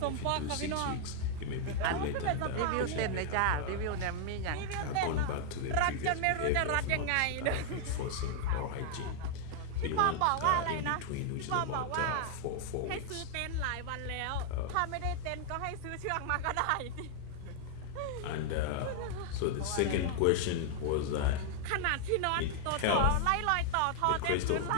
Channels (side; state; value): both; different; correlation 0.00